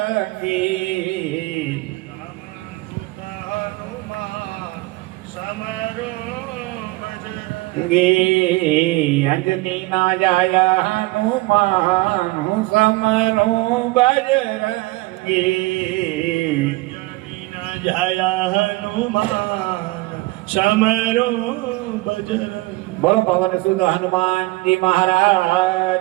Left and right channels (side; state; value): left; quieter; 21.3 dB